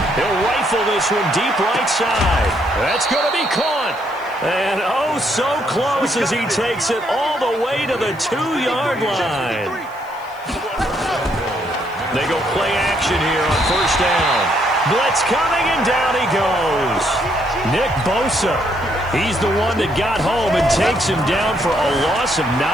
He'll rifle this one deep right side. That's going to be caught. And oh, so close as he takes it all the way to the 2-yard line. They go play action here on first down. Blitz coming, and down he goes. Nick Bosa, he's the one that got home and takes him down for a loss of 9.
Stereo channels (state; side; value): noise; right; hiss, 27 dB below the sound